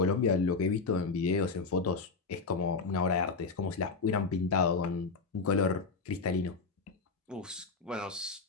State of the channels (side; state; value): right; quieter; 4.4 dB